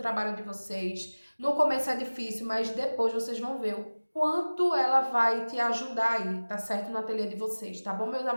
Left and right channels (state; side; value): inverted; both; correlation -1.00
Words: de vocês. No começo é difícil, mas depois vocês vão ver o quanto ela vai te ajudar aí, tá certo? No ateliê de vocês, tá bom, meus